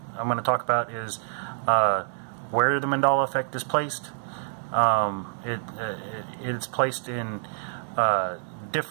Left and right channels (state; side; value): silent; left; digital silence